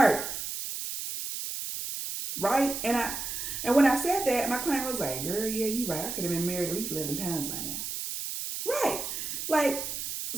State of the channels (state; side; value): noise; right; hiss, 5 dB below the sound